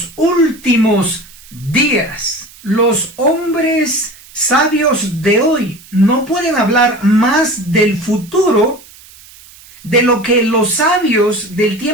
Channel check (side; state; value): right; noise; hiss, 22 dB below the sound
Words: últimos días. Los hombres sabios de hoy no pueden hablar más del futuro de lo que los sabios del